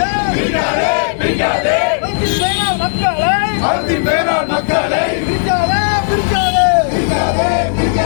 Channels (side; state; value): right; silent; digital silence